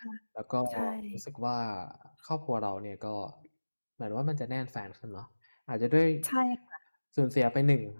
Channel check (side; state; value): both; inverted; correlation -1.00